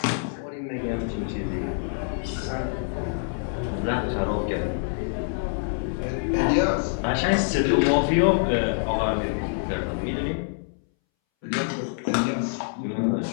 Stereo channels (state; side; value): silent; right; 61 dB below the other